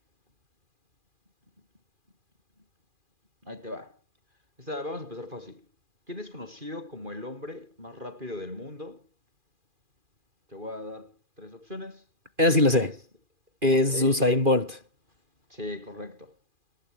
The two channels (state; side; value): late; left; 2.4 ms